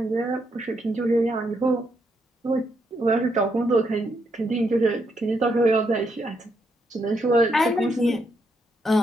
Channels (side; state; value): both; normal; correlation 0.78